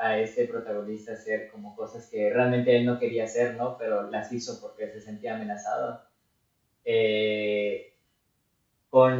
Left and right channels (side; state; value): both; identical; correlation 1.00